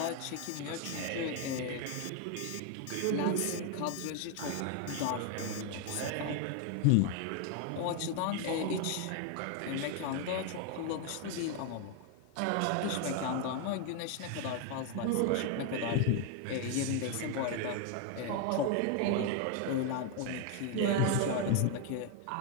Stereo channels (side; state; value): both; different; correlation 0.01